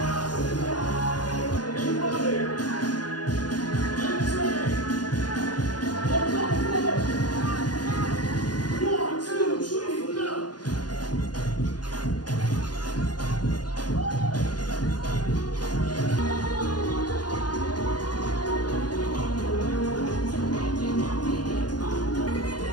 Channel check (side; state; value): right; late; 0.69 ms